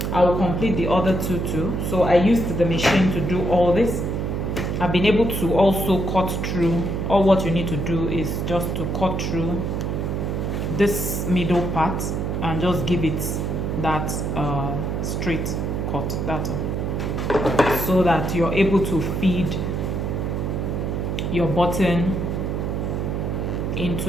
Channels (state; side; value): noise; right; hum, 1 dB below the sound